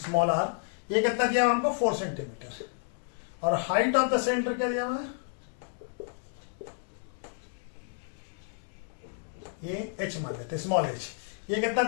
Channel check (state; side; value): silent; right; digital silence